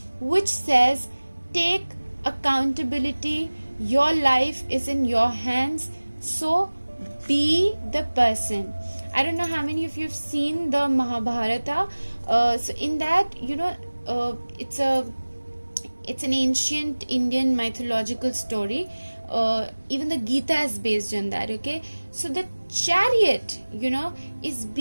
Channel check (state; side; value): inverted; both; correlation -1.00